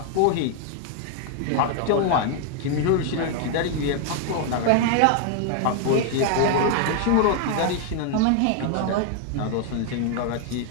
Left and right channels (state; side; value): different; both; correlation 0.00